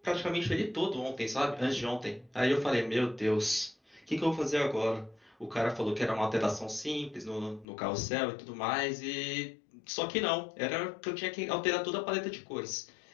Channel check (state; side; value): drops out; right; at 7.7 s